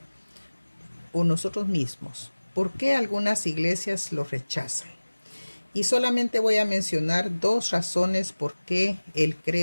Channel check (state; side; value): inverted; both; correlation -1.00